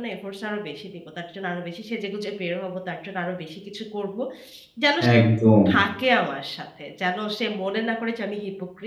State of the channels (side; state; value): both; identical; correlation 1.00